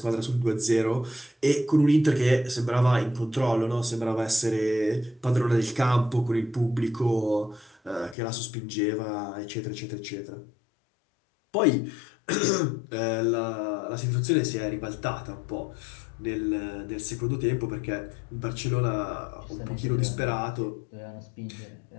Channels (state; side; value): drops out; right; at 8.2 s